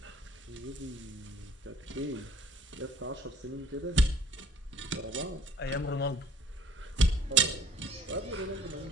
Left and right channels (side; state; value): both; normal; correlation 0.54